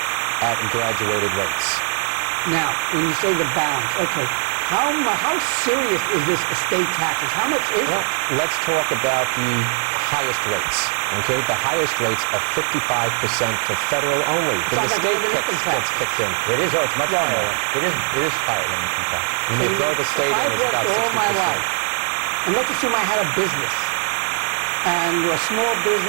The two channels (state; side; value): silent; left; digital silence